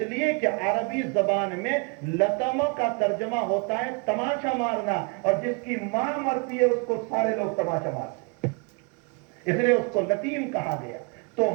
لیے کہ عربی زبان میں لطمہ کا ترجمہ ہوتا ہے تماشا مارنا، اور جس کی ماں مرتی ہے اس کو سارے لوگ تماشا مارتے ہیں، اس لیے اس کو لتیم کہا گیا۔ تو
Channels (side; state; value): left; quieter; 31.3 dB